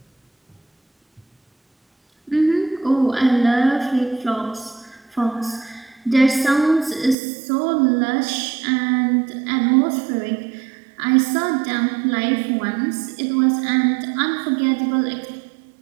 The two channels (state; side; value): drops out; left; at 7.2 s